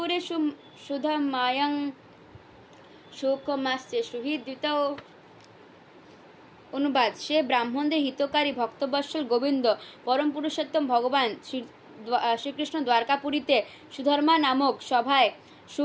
সুধমায়ং শোকমাস্য সুহৃদ্যুতৌ। অনুবাদ সে ব্রাহ্মণদের হিতকারী ভক্তবৎসল গোবিন্দ পরম পুরুষোত্তম ভগবান শ্রীকৃষ্ণ দ্বারকাপুরীতে সুধর্মা নামক সভায়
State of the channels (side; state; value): both; identical; correlation 1.00